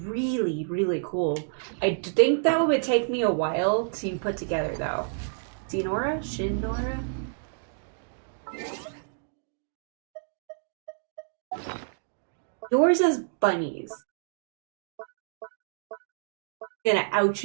really cool. I think that would take me a while to put together, though. Shinora? Shinora? Yours is bunnies. I'm gonna out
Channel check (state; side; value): silent; left; digital silence